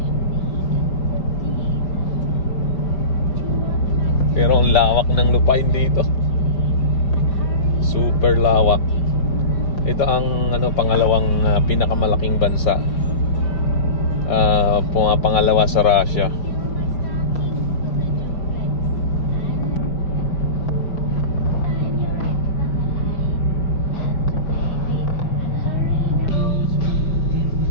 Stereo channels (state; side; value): late; right; 5.0 ms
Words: Pero ang lawak ng lupain dito. Super lawak. Ito ang ano, pangalawang pinakamalaking bansa. Pangalawa sa Russia.